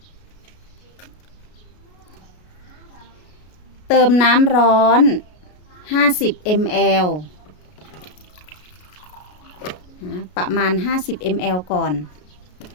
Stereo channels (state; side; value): late; right; 33 ms